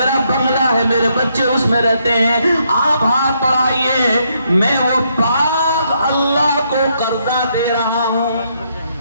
بنگلہ ہے، میرے بچے اس میں رہتے ہیں، آپ ہاتھ بڑھائیے، میں وہ باغ اللہ کو قرضہ دے رہا ہوں۔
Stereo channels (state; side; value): inverted; both; correlation -0.75